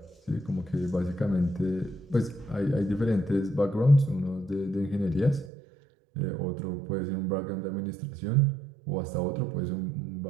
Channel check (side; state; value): left; drops out; at 5.5 s